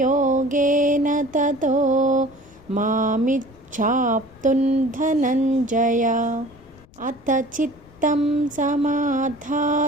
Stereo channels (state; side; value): noise; left; rumble, 26 dB below the sound